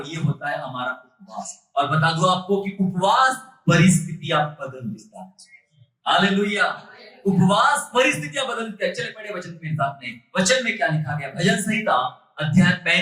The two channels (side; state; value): both; identical; correlation 1.00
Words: ये होता है हमारा उपवास। और बता दूं आपको कि उपवास परिस्थितियां बदल देता है। हालेलुया, उपवास परिस्थितियां बदल देता है। चले पढ़े वचन के साथ में, वचन में क्या लिखा गया? भजन संहिता अध्याय